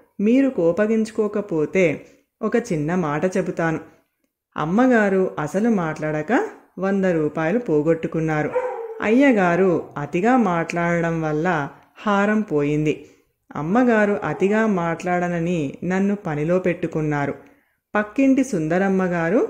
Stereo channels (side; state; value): both; identical; correlation 1.00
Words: మీరు కోపగించుకోకపోతే ఒక చిన్న మాట చెబుతాను, అమ్మగారు అసలు మాట్లాడక 100 రూపాయలు పోగొట్టుకున్నారు, అయ్యగారు అతిగా మాట్లాడడం వల్ల హారం పోయింది, అమ్మగారు అతిగా మాట్లాడనని నన్ను పనిలో పెట్టుకున్నారు, పక్కింటి సుందరమ్మగారు